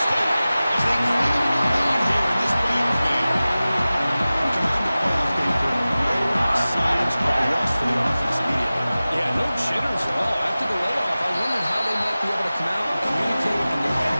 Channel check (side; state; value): both; inverted; correlation -0.97